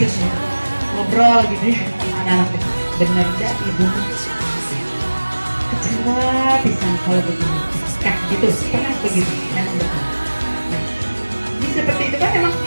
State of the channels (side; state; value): both; inverted; correlation -1.00